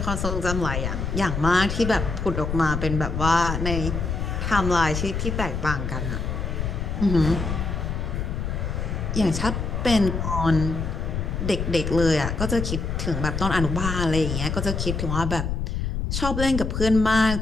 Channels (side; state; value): left; noise; rumble, 2 dB below the sound